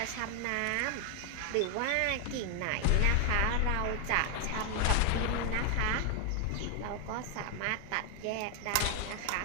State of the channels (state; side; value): different; both; correlation 0.00